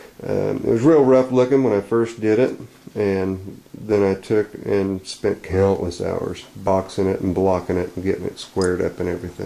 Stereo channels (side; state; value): both; identical; correlation 1.00